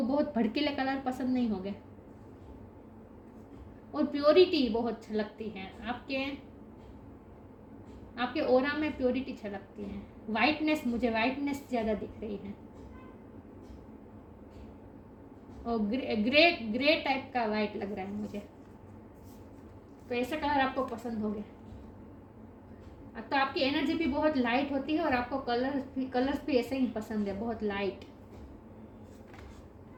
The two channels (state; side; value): identical; both; correlation 1.00